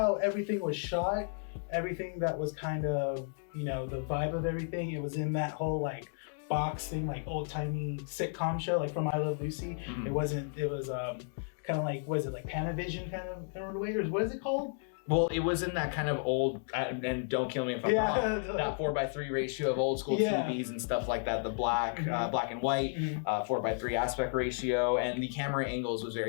everything was shot. Everything that was kind of, you know, the vibe of everything. It was in that whole like box thing, like old-timey sitcom show, like from I Love Lucy. Mhm. It was kind of like, was it like Panavision kind of way, or what is it called? Well, it was in that kind of old, and don't kill me if I'm wrong, that 4:3 ratio of old school TVs and stuff like that. The black and white, 4:3 aspect ratio, and the camera angles was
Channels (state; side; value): silent; right; digital silence